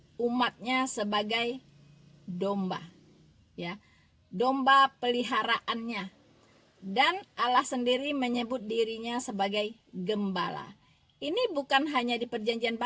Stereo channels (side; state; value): both; identical; correlation 1.00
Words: umatnya sebagai domba, ya, domba peliharaannya. Dan Allah sendiri menyebut dirinya sebagai gembala. Ini bukan hanya di Perjanjian